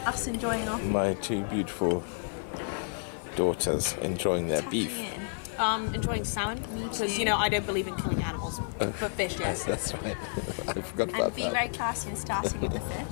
Us enjoying our my two beautiful daughters enjoying their beef. enjoying salmon because I don't believe in killing animals, but fish, yes. That's right. I forgot about And be that. very classy and starting with the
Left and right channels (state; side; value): silent; right; digital silence